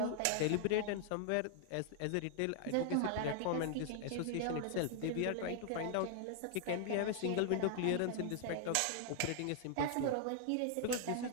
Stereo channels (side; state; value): both; different; correlation 0.00